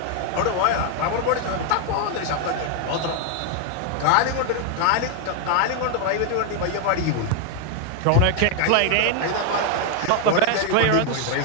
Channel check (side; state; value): both; different; correlation 0.00